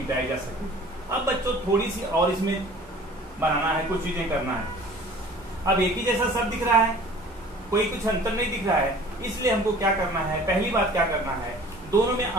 जा सके। अब बच्चों थोड़ी सी और इसमें बनाना है, कुछ चीजें करना है। अब एक ही जैसा सब दिख रहा है, कोई कुछ अंतर नहीं दिख रहा है, इसलिए हमको क्या करना है, पहली बात क्या करना है, दोनों में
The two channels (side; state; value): both; normal; correlation 0.47